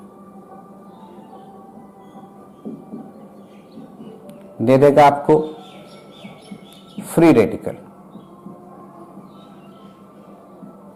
दे देगा आपको फ्री रेडिकल,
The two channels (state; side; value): identical; both; correlation 1.00